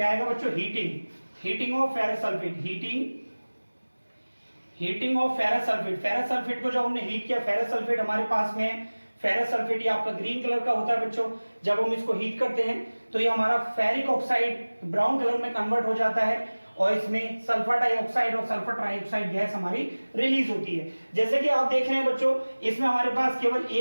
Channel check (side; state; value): both; inverted; correlation -1.00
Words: आएगा बच्चों? Heating of ferrous sulphate, heating of ferrous sulphate. Ferrous sulphate को जब हमने हीट किया, फेरस सल्फेट हमारे पास में है, फेरस सल्फेट ये आपका ग्रीन कलर का होता है बच्चों। जब हम इसको हीट करते हैं तो ये हमारा फेरिक ऑक्साइड ब्राउन कलर में कन्वर्ट हो जाता है और इसमें सल्फर डाइऑक्साइड और सल्फर ट्राइऑक्साइड गैस हमारी रिलीज होती है। जैसे कि आप देख रहे हैं बच्चों, इसमें हमारे पास केवल